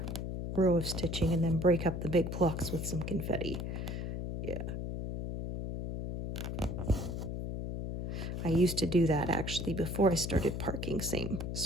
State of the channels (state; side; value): noise; left; hum, 4 dB below the sound